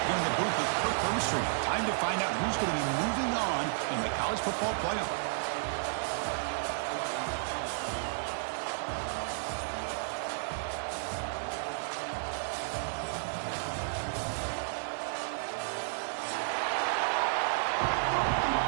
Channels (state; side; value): silent; left; digital silence